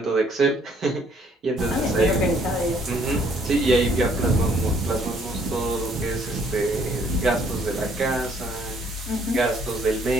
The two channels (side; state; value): both; normal; correlation 0.64